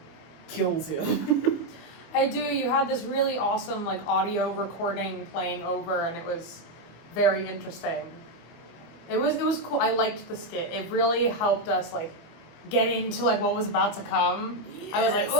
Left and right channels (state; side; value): late; right; 24 ms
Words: kills him. I do. You had this really awesome audio recording playing over, and it was very interesting. It was cool. I liked the skit. It really helped us get into what was about to come. Yes. I was like,